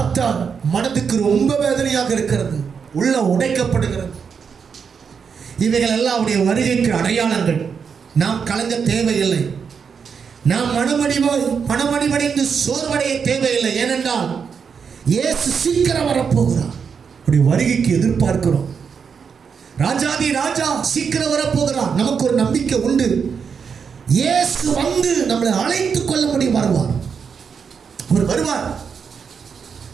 மனதுக்கு ரொம்ப வேதனையாக இருக்கிறது, உள்ள உடைக்கப்படுகிறது. இவைகள் எல்லாம் அவருடைய வருகைக்கு அடையாளங்கள். நாம் கலங்க தேவையில்லை, நாம் மனமடிவடைந்து சோர்வடைய தேவையில்லை. ஏனென்றால் இயேசு சீக்கிரம் வரப்போகிறார். அவருடைய வருகைக்கு எதிர்பார்க்கிறோம். ராஜாதி ராஜா சீக்கிரம் வரப்போகிறார். நமக்கு ஒரு நம்பிக்கை உண்டு. இயேசு வந்து நம்மளை அழைத்துக் கொள்ளும்படி வருவார். அவர் வருவார்.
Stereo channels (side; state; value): left; quieter; 6.3 dB